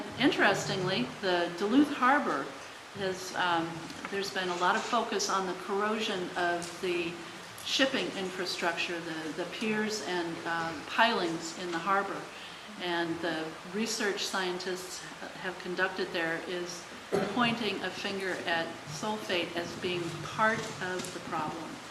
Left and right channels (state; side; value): identical; both; correlation 1.00